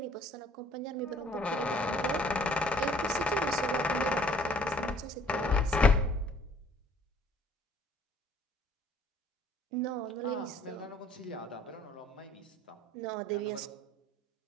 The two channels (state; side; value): normal; both; correlation 0.58